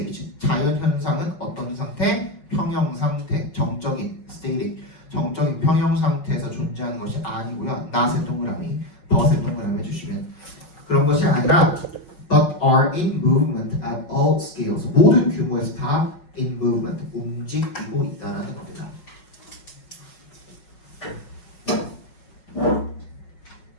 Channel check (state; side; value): late; right; 5.4 ms